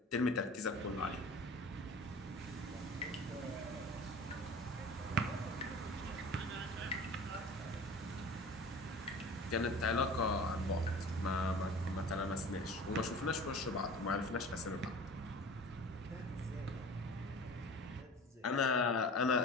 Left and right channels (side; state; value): both; normal; correlation 0.40